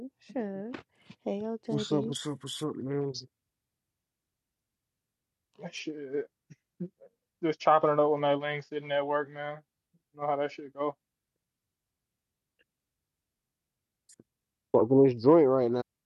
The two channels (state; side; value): identical; both; correlation 1.00